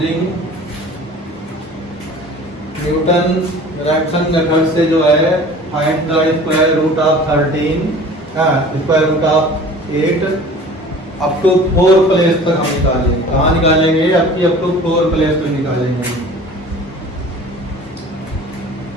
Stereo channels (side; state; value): both; normal; correlation 0.44